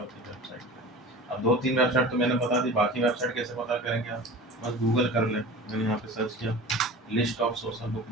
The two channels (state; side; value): normal; both; correlation 0.36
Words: अपनी वेबसाइट पे। अब 2-3 वेबसाइट तो मैंने बता दी, बाकी वेबसाइट कैसे पता करेंगे आप? बस गूगल कर लें। मैंने यहाँ पे सर्च किया list of social book